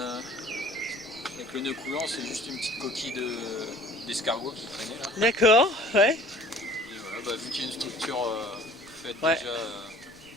le nœud coulant, c'est juste une petite coquille d'escargot qui traînait là. D'accord, ouais. Et voilà, bah, vu qu'il y a une structure faite ouais. déjà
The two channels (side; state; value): left; noise; rumble, 30 dB below the sound